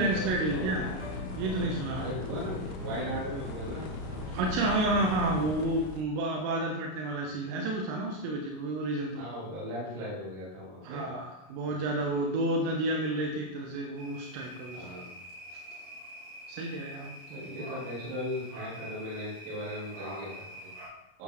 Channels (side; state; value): left; late; 33 ms